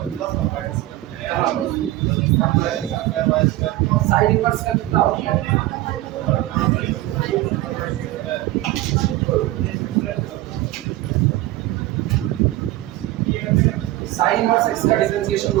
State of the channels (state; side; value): quieter; left; 16.6 dB